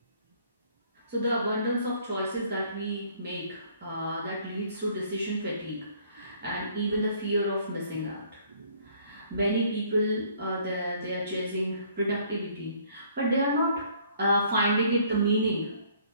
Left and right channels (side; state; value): both; inverted; correlation -0.60